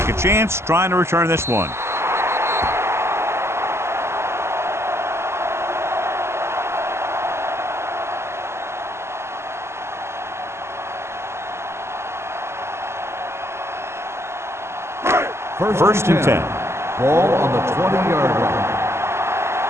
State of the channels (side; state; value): left; late; 0.13 ms